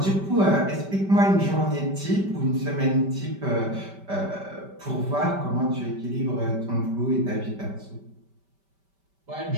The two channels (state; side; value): late; left; 5.1 ms